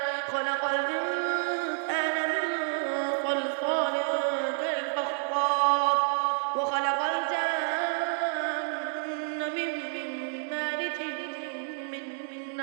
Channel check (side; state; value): left; silent; digital silence